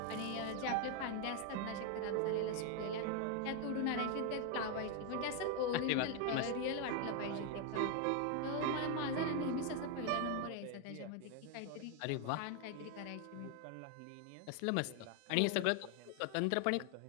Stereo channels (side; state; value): both; different; correlation 0.01